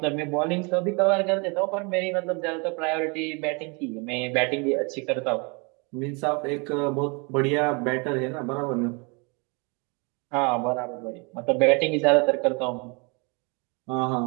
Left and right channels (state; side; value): quieter; left; 31.5 dB